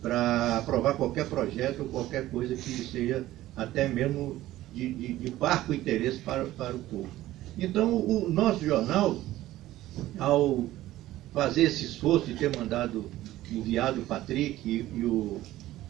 para aprovar qualquer projeto ou qualquer coisa que seja até mesmo de parco interesse para o povo. Então, o nosso jornal, ao fazer esse esforço de ter enviado o Patrick e o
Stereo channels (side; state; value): left; quieter; 15.3 dB